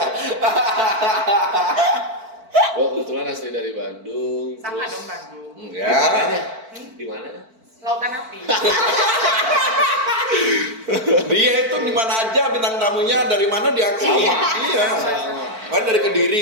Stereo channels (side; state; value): left; late; 4.5 ms